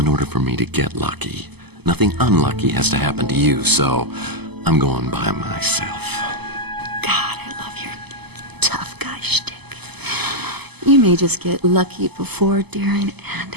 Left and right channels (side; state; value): left; late; 0.98 ms